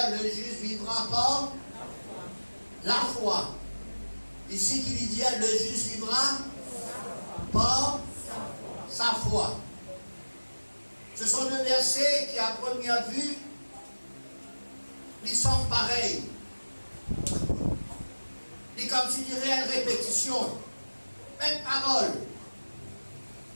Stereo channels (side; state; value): both; inverted; correlation -1.00